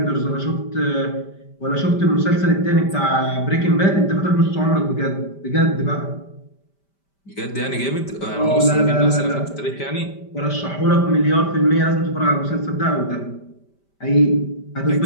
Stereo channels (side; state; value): right; late; 5.1 ms